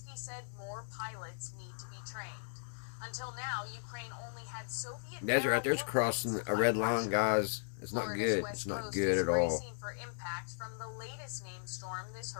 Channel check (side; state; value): right; silent; digital silence